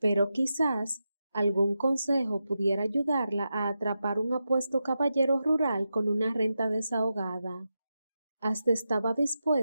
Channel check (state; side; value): inverted; both; correlation -0.89